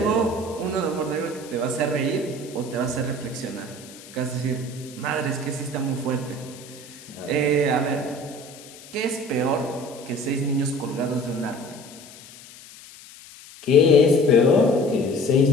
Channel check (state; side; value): noise; left; hiss, 19 dB below the sound